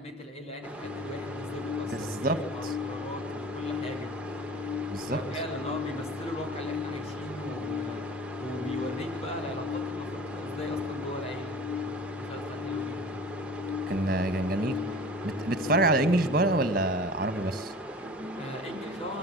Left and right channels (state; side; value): normal; both; correlation 0.41